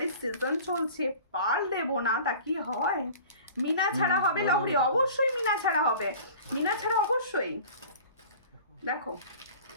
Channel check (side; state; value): both; inverted; correlation -0.42